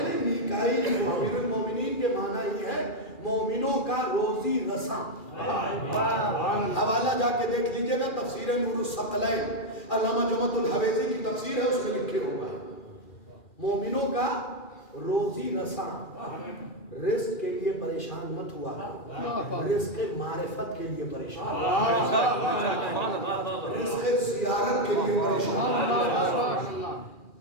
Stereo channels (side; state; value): right; late; 2.4 ms